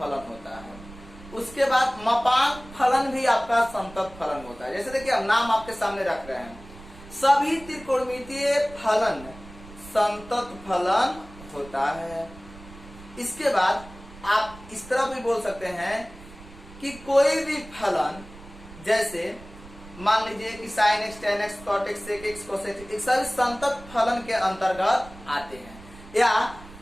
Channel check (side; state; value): right; noise; rumble, 18 dB below the sound